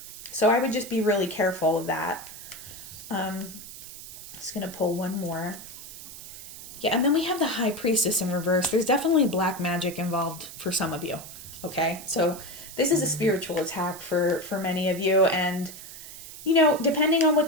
So I would just be really careful of that. Just going to pull one more. Yeah, and then we have the High Priestess in reverse. There's definitely black magic involved for some of you, okay? So this is a spiritual attack for many of you, and, depending on what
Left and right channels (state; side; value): noise; right; hiss, 14 dB below the sound